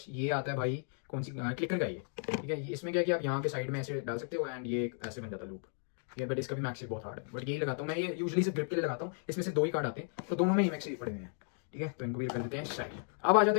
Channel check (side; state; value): right; silent; 55 dB below the other